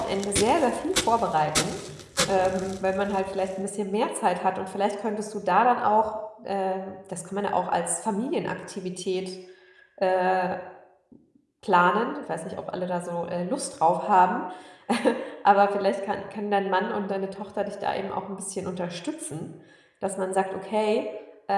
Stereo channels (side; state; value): both; identical; correlation 1.00